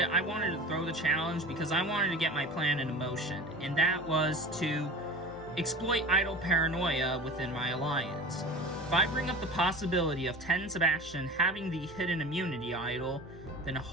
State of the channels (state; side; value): normal; both; correlation 0.35